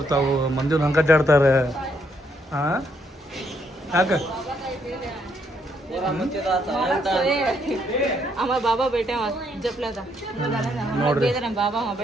ಮಂದಿನ ಹಂಗೆ ಅಡ್ಡಾಡ್ತಾರೆ. ಹಾಂ ಯಾಕೆ ಬಾಬಾ ಬೇಟೆ ನೋಡ್ರಿ ಬಾಬಾ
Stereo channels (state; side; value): normal; both; correlation 0.73